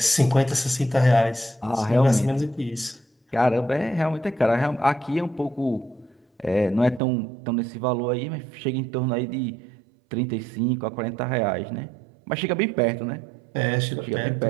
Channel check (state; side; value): drops out; left; at 7.0 s